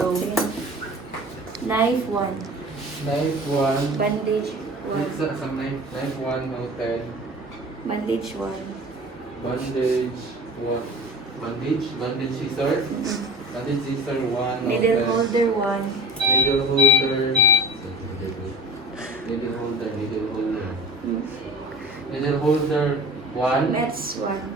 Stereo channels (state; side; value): normal; both; correlation 0.36